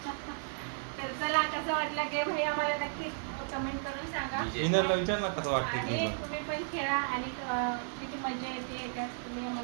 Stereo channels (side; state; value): left; silent; digital silence